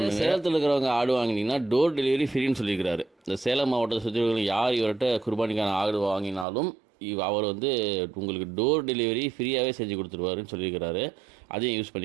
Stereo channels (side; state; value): left; drops out; at 6.5 s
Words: சேலத்தில் இருக்கிறவங்க ஆடு வாங்கினீங்கன்னா டோர் டெலிவரி ஃப்ரீன்னு சொல்லியிருக்கிறாரு. இந்த சேலம் மாவட்டத்தை சுற்றி யார் இவர்கிட்ட குர்பானிக்கான ஆடு வாங்கினாலும் அவர் வந்து உங்களுக்கு டோர் டெலிவரி ஃப்ரீயாகவே செஞ்சு கொடுத்துருவாருன்னு சொல்லியிருக்கிறாரு. அதையும் யூஸ்